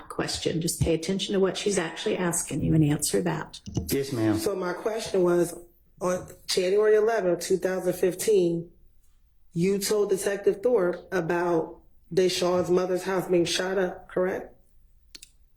question. Just pay attention to what she's actually asking you and answer that. Yes, ma'am. So my question was, on January 11, 2015, you told Detective Thorpe about Deshaun's mother's house being shot up, correct?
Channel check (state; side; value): identical; both; correlation 1.00